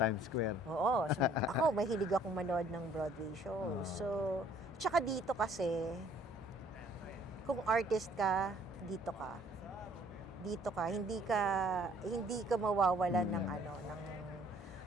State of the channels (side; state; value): both; normal; correlation 0.59